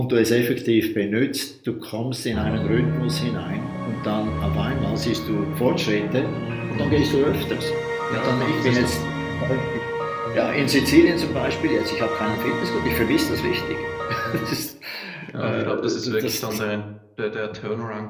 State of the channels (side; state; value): both; identical; correlation 1.00